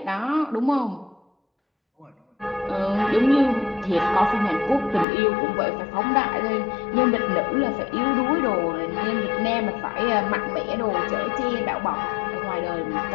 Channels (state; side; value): drops out; right; at 5.1 s